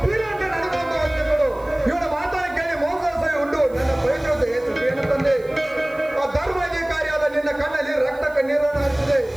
ಬೀರ ಅಂತ ನನಗೊಂದು ಅಂದುಗಳು ಇವನ ಮಾತನ್ನು ಕೇಳಿ ಮೋಸ ಉಂಟು ನನ್ನ ಪವಿತ್ರತೆ ಏನು ತಂದೆ. ಆ ಧರ್ಮಾಧಿಕಾರಿಯಾದ ನಿನ್ನ ಕಣ್ಣಲ್ಲಿ ರಕ್ತ ಕಣ್ಣೀರನ್ನು ಹರಿಸಿದೆ.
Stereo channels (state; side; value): noise; right; hiss, 28 dB below the sound